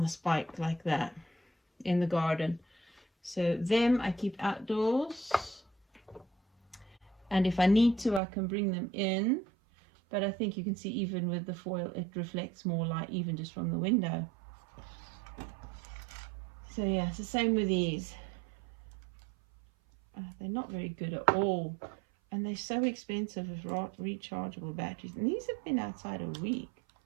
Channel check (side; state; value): left; drops out; at 8.2 s